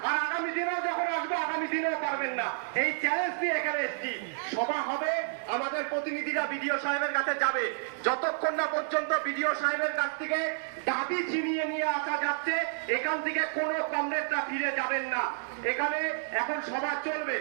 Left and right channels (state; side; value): silent; left; digital silence